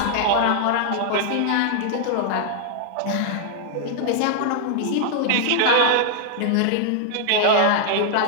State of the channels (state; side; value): different; both; correlation 0.00